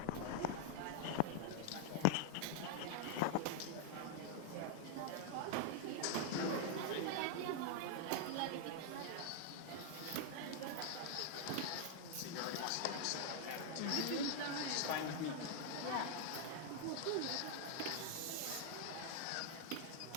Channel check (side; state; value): both; different; correlation 0.00